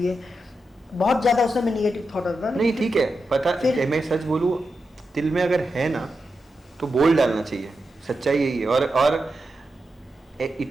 बहुत ज़्यादा उसमें निगेटिव थॉट आता था। नहीं ठीक है, पता फिर मैं सच बोलूँ, दिल में अगर है ना तो बोल डालना चाहिए, सच्चाई यही है। और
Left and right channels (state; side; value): normal; both; correlation 0.88